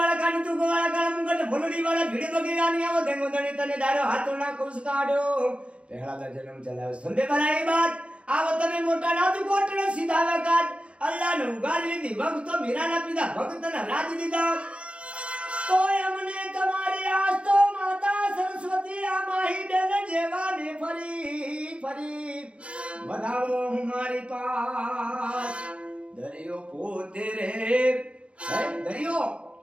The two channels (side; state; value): left; late; 0.060 ms